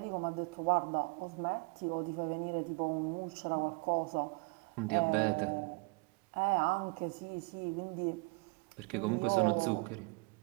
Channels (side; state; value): left; quieter; 31.0 dB